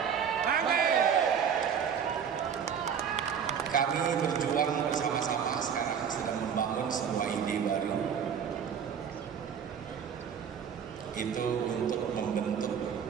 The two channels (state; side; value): quieter; left; 7.6 dB